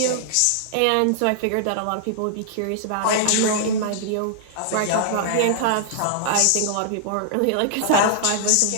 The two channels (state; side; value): different; both; correlation -0.01